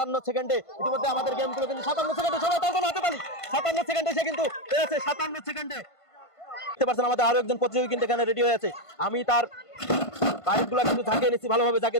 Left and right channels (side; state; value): right; late; 1.5 ms